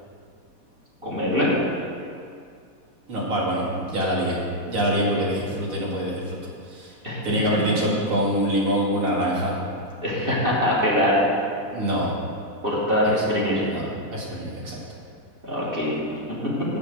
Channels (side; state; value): left; late; 4.1 ms